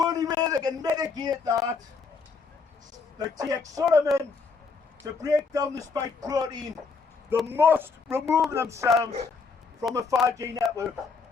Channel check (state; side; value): quieter; right; 4.8 dB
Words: way they can mitigate that, they take Solomon to break down the spike protein. They must remove themselves from a 5G network.